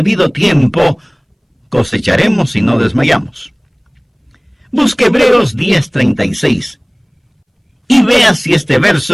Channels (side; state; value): both; identical; correlation 1.00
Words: tiempo cosecharemos si no desmayamos. Busque Hebreos 10:36 y vea si este